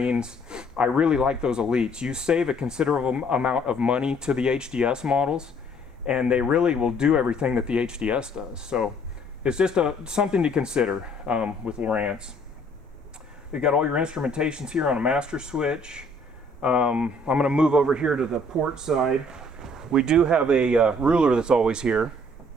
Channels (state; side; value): normal; both; correlation 0.60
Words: I really like those Elites. You save a considerable amount of money to the HDS models, and they really will do everything that the HDS does. So it's just something to consider with Lowrance. You've got all your instrumentations here on a master switch. I'm going to move over here to the port side. We do have a ruler that's always here